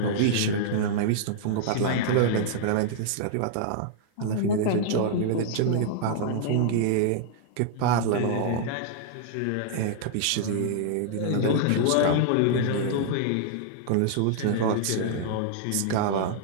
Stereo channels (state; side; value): different; both; correlation -0.01